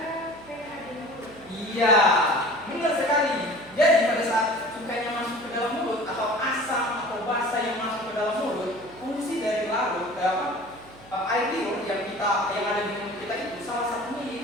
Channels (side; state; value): right; noise; hum, 22 dB below the sound